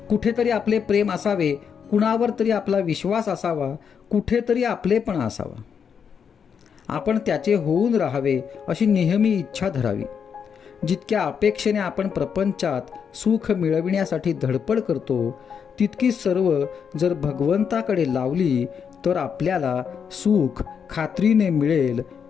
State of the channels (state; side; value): quieter; right; 7.0 dB